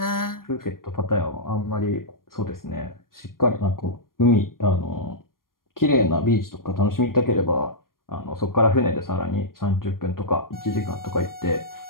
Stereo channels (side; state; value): right; late; 0.91 ms